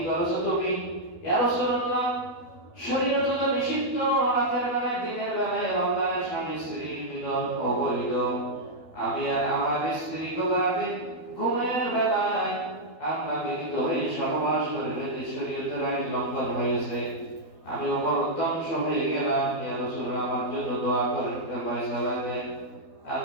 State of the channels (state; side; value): late; right; 12 ms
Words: করেছো তুমি? ইয়া রাসূলুল্লাহ, শরীয়ত তো নিষিদ্ধ রাতের বেলায় দিনের বেলায় রমজানের স্বামী স্ত্রী মিলন অবৈধ। আমি আর আমার স্ত্রী রাতে ঘুমের বেলায় আমরা মিলিত হয়ে সহবাস করে যদি শরীয়তের আইন লঙ্ঘন হয়েছে, আমি ওমর ধ্বংস হয়ে গেলাম। ইয়া রাসূলুল্লাহ, আমার জন্য দোয়া করেন, ফয়সালা দেন।